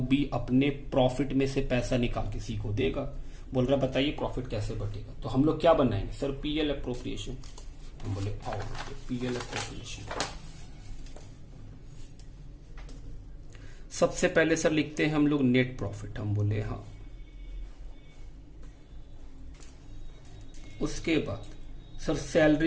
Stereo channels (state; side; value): identical; both; correlation 1.00